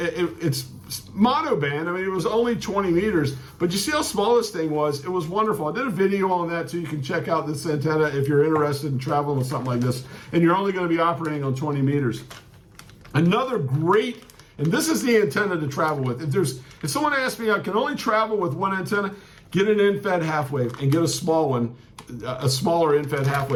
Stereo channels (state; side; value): identical; both; correlation 1.00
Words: monoband. I mean, it was only 20 meters, but you see how small this thing was? It was wonderful. I did a video on that too. You can check out this antenna if you're interested in traveling with something like this, and you're only going to be operating on 20 meters. Another great, and this is the antenna to travel with. If someone asks me, I can only travel with one antenna, get an in-fed half wave and get a small one, a smaller in-fed half